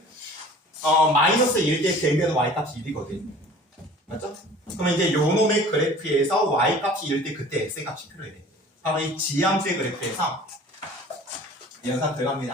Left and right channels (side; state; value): both; normal; correlation 0.46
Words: 마이너스 1 대 대면 y값이 1이거든. 맞죠? 그러면 이제 요 놈의 그래프에서 y값이 1 때 그때 x값이 필요해. 바로 이 지함수의 그래프에서 연산